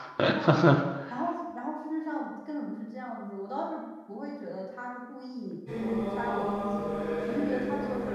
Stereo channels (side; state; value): both; identical; correlation 1.00